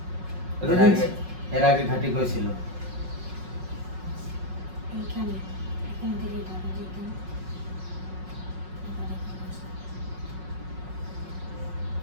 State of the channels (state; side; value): late; left; 5.4 ms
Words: এর আগে ঘাটি কইছিল? এইখানে, এখান থেকে ঢাকা যেতাম। এবার এখানে আসলাম।